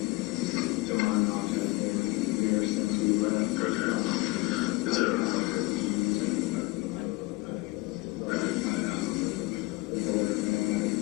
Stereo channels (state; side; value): quieter; right; 23.3 dB